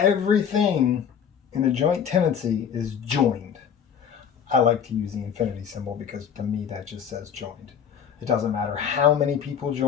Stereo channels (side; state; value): right; quieter; 7.9 dB